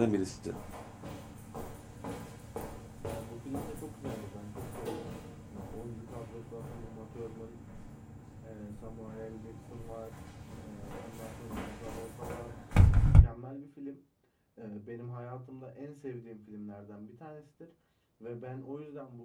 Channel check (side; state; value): both; identical; correlation 1.00